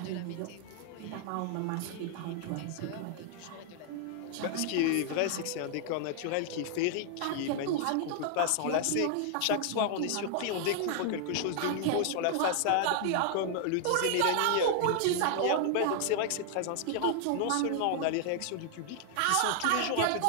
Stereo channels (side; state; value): both; different; correlation 0.00